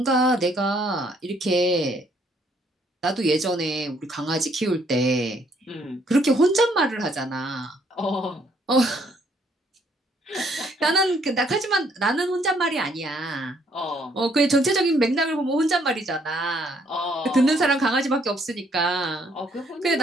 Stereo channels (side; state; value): both; normal; correlation 0.67